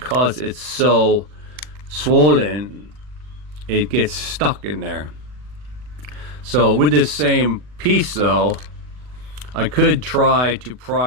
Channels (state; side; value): late; left; 40 ms